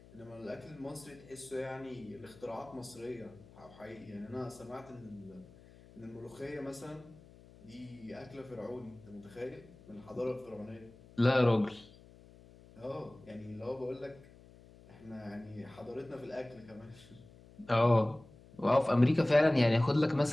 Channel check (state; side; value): noise; left; hum, 22 dB below the sound